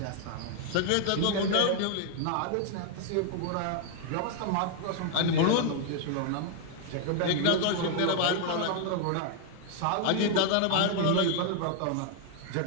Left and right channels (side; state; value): both; different; correlation 0.00